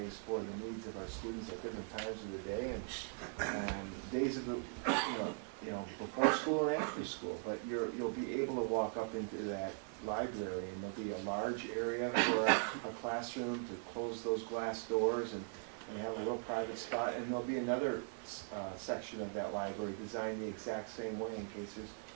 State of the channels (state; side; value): silent; left; 51 dB below the other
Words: for the needs of our students at different times of the day and days of the, before school and after school. But you'll be able to walk up into that library and there'll be a large area for a classroom to close those glass doors and have a little private spot, and there'll be another section of that library designed the exact same way in case there's